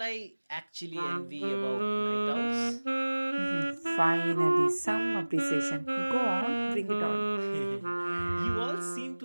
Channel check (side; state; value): both; inverted; correlation -1.00